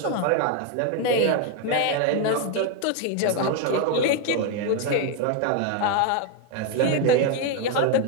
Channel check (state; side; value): different; both; correlation 0.01